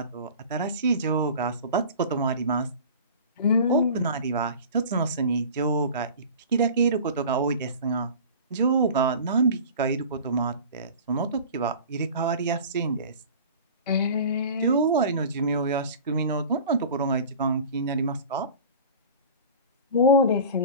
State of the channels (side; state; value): both; inverted; correlation -0.39